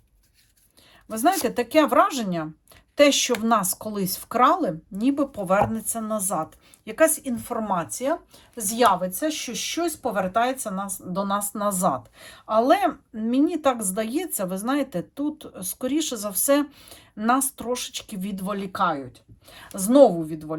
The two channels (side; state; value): both; identical; correlation 1.00